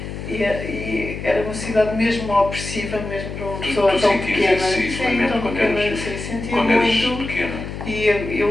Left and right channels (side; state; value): left; noise; hum, 8 dB below the sound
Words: E era uma cidade mesmo opressiva, mesmo para uma pessoa tão pequena. Sim, tão pequena, sentia quando muito. Pequena. E